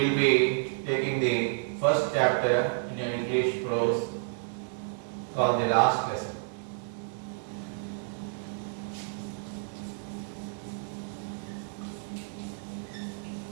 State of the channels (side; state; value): left; silent; digital silence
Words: be taking the first chapter in your English prose called The Last Lesson.